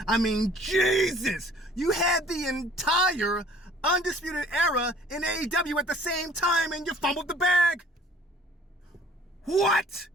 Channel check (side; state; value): both; normal; correlation 0.54